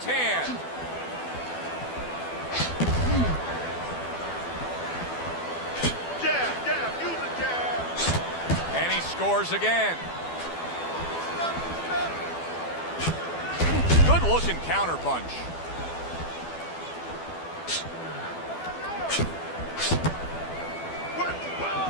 hand. Jab, use a jab. And he scores again. Good looking counter punch.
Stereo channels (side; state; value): right; late; 12 ms